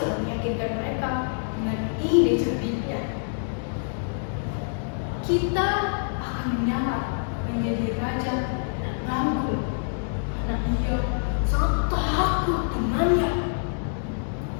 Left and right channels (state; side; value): silent; right; digital silence